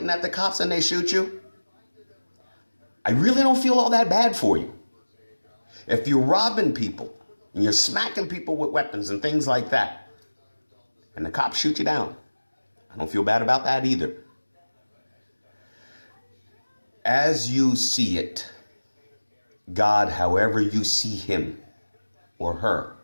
at the cops and they shoot you, I really don't feel all that bad for you. If you're robbing people and you're smacking people with weapons and things like that, and the cops shoot you down, I don't feel bad about that either. As you see it, God, however you see him or her,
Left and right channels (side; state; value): both; inverted; correlation -1.00